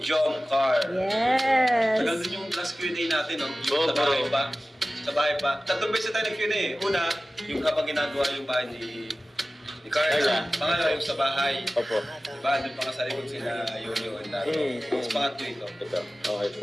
Jomcar. Yes. Tagal din yung last Q&A natin, no? Oo, Sa bahay bro. pa. Sa bahay pa. Tatlong beses tayo nag-Q&A. Una, yung habang ginagawa yung bahay ni Carla. Carla. Pangalawa, yung sa bahay. Opo. Diba? Doon pa nga sa likod sila Yoyo and Dato. Tapos pangatlo ito. Ito, okay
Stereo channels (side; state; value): both; normal; correlation 0.96